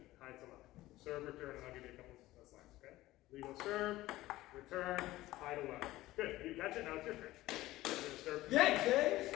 high to low. Serve, return, and I'll give you a couple of slides. Okay? Legal serve, return, high to low. Good. You catch it, now it's your turn. Serve. Yeah, James!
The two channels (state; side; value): quieter; right; 16.9 dB